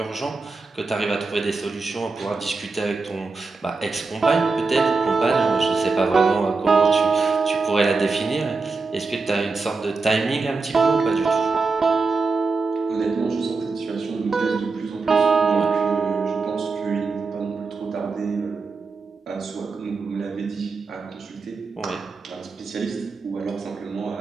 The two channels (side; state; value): left; quieter; 4.1 dB